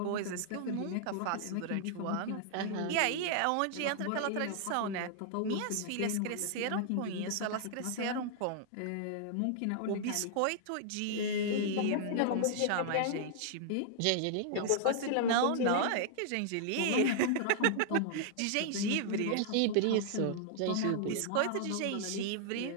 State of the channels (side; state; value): both; different; correlation -0.01